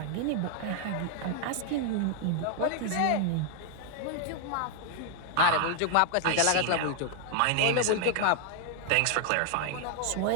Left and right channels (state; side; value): different; both; correlation 0.00